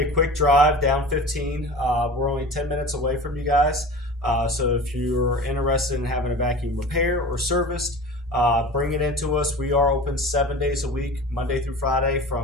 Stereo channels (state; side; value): normal; both; correlation 0.36